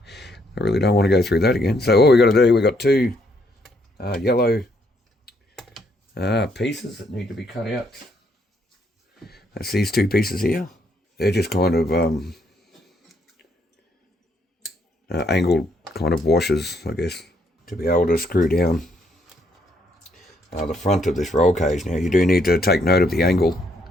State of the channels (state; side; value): normal; both; correlation 0.71